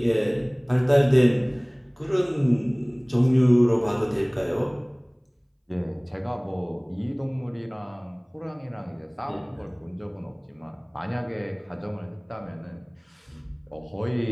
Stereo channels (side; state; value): both; identical; correlation 1.00